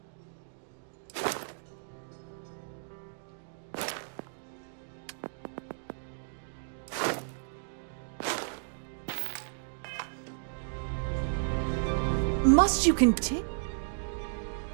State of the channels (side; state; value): left; silent; digital silence